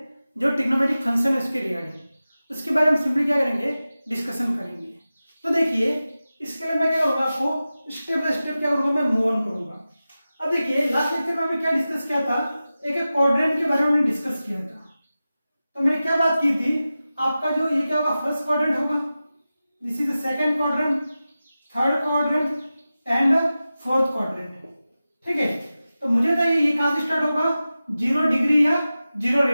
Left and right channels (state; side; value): inverted; both; correlation -0.95